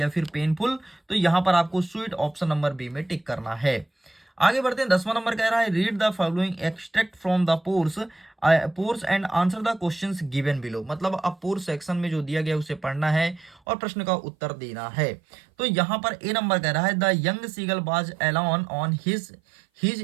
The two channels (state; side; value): drops out; left; at 13.6 s